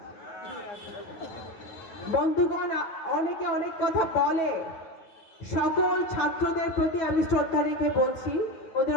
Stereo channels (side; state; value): right; late; 8.8 ms